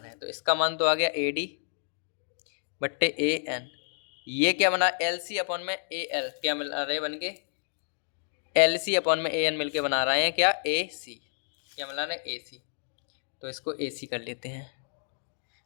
हैं। तो इसका मान तो आ गया AD बट्टे AN। ये क्या बना LC अपॉन में AL क्या मिल रहे बन के LC अपॉन में AN मिलके बना रहे हैं क्या AC, क्या मिला रहे हैं AC। तो इसको AC कर लेते हैं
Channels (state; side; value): silent; right; digital silence